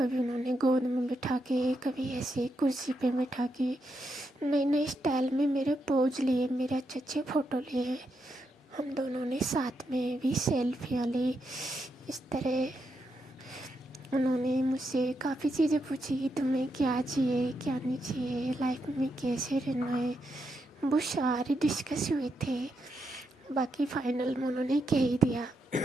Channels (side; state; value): both; normal; correlation 0.82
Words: उन्होंने गोद में बिठा के, कभी ऐसे कुर्सी पे बिठा के नए नए स्टाइल में मेरे पोज लिए, मेरे अच्छे अच्छे फ़ोटो लिए, हम दोनों ने साथ में भी सेल्फियाँ ली। इस तरह उन्होंने मुझसे काफ़ी चीज़ें पूछी कि तुम्हें क्या चाहिए क्या नहीं चाहिए, लाइफ में कैसे रहना है, वो सारे डिस्कस हुए थे। बाकी फाइनल में उन्होंने कह ही दिया